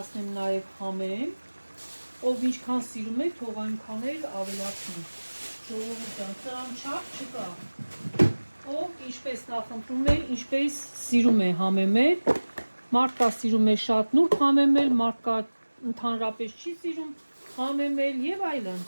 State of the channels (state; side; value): inverted; both; correlation -1.00